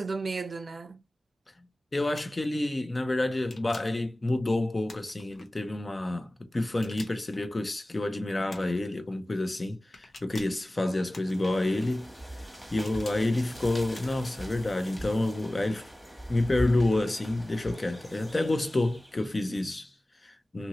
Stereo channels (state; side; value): normal; both; correlation 0.97